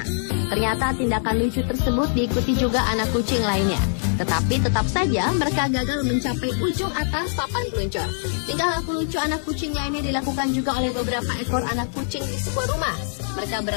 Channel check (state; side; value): silent; right; 62 dB below the other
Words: Ternyata tindakan lucu tersebut diikuti juga anak kucing lainnya. Tetapi tetap saja mereka gagal mencapai ujung atas papan peluncur. Tingkah laku lucu anak kucing lainnya dilakukan juga oleh beberapa ekor anak kucing di sebuah rumah. Mereka